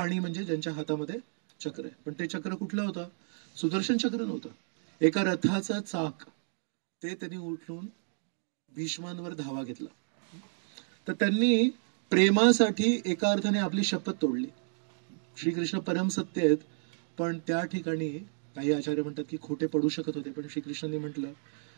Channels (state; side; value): silent; left; 57 dB below the other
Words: म्हणजे ज्यांच्या हातामध्ये चक्र आहे. पण ते चक्र कुठलं होतं? सुदर्शन चक्र नव्हतं, एका रथाचा चाक. ते त्यांनी उठून भीष्मांवर धावा घेतला. तर त्यांनी प्रेमासाठी एका अर्थाने आपली शपथ तोडली. श्रीकृष्ण परमसत्य आहेत, पण त्या ठिकाणी काही आचार्य म्हणतात की खोटे पडू शकत होते. पण श्रीकृष्णांनी म्हटलं